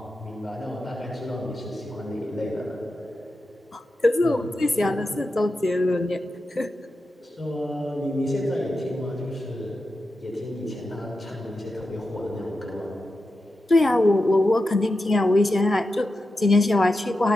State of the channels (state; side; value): normal; both; correlation 0.90